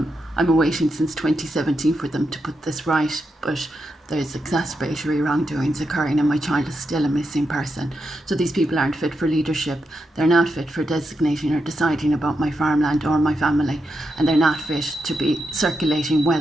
I'm awaiting since 2017 for them to put this right, but there's exacerbatory wrongdoings occurring and my child is still a missing person. So these people aren't fit for leadership, they're not fit for designating or deciding about my farmland or my family, and they're not fit to be circulating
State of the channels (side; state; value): both; normal; correlation 0.85